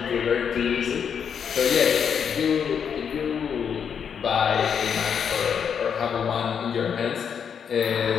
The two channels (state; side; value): quieter; right; 7.4 dB